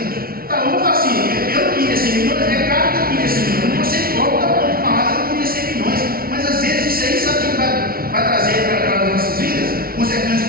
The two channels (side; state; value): left; late; 0.43 ms